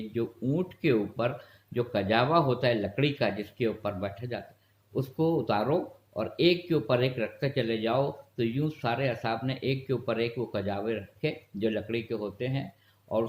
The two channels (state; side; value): identical; both; correlation 1.00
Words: جو اونٹ کے اوپر جو کجاوا ہوتا ہے لکڑی کا، جس کے اوپر بیٹھا جاتا ہے، اس کو اتارو اور ایک کے اوپر ایک رکھتے چلے جاؤ۔ تو یوں سارے اصحاب نے ایک کے اوپر ایک وہ کجاوے رکھے جو لکڑی کے ہوتے ہیں، اور